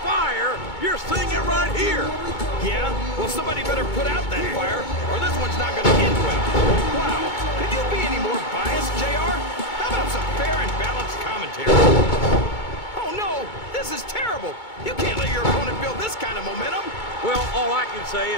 fire, you're seeing it right here! Yeah? Well, somebody better put out that fire, or this one's not going to end well. Wow, could you be any more biased, JR? How about some fair and balanced commentary? Oh, no! This is terrible! You can't let your opponent build this kind of momentum! Well, all I can say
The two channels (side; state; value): right; late; 2.2 ms